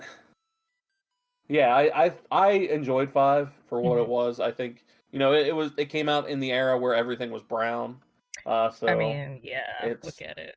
yeah, I enjoyed 5 for what it was. I think it came out in the era where everything was brown. So I mean, yeah, it's look at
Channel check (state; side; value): identical; both; correlation 1.00